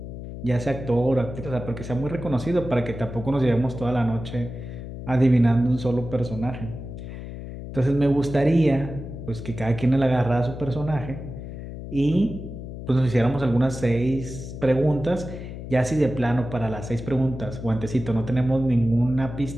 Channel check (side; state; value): left; noise; hum, 10 dB below the sound